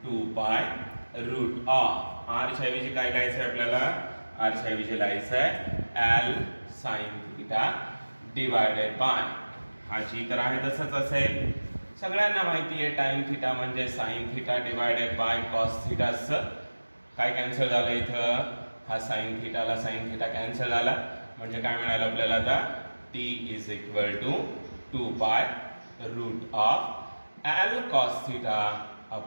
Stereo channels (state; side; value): inverted; both; correlation -1.00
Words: 2 pi root of r च्या ऐवजी काय लिहायचं आहे आपल्याला. r च्या ऐवजी लिहायचं आहे l sin theta divided by, हा जी तर आहे तसंच असेल. सगळ्यांना माहिती आहे tan थीटा म्हणजे sin theta divided by cos theta. काय कॅन्सल झालं इथं, हा sin थीटाला sin थीटा कॅन्सल झाला, म्हणजे काय मिळालं आपल्याला आता. t is equal to 2 pi root of l cos theta